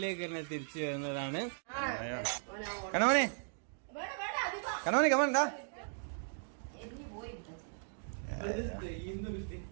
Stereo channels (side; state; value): left; silent; digital silence